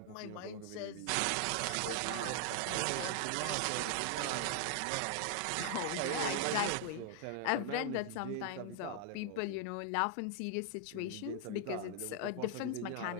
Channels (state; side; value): different; both; correlation 0.00